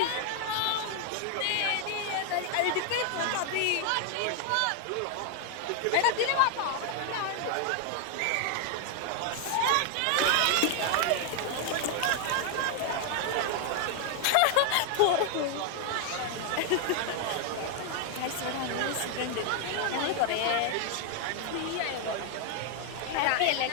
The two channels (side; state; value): both; different; correlation 0.00